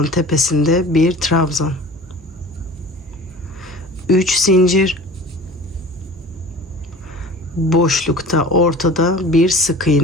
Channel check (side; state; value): both; normal; correlation 0.40